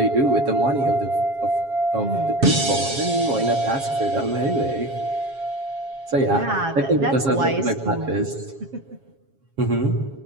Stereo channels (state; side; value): late; left; 7.3 ms